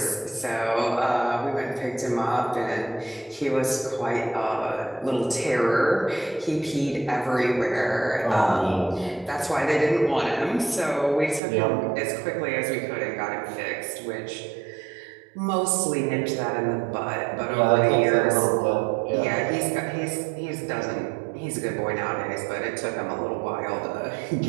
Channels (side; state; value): left; drops out; at 11.4 s